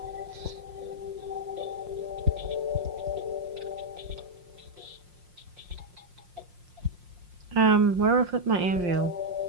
Where do I put my anvil?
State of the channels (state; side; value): late; left; 5.6 ms